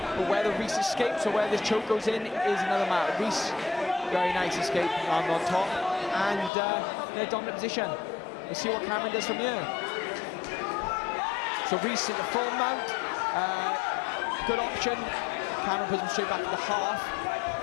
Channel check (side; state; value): right; drops out; at 6.5 s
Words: But whether Rhys escapes or where this choke goes in is another matter. Rhys, very nice escape, land on top, and in a dominant position. We'll see what Cameron does from here. So Rhys into full mount, good option. Cameron puts him straight back to the half,